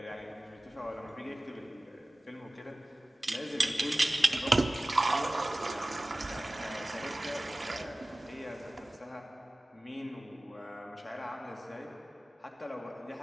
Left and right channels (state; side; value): normal; both; correlation 0.98